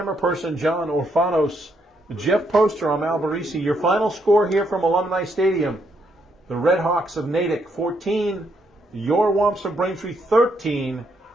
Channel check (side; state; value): both; normal; correlation 0.75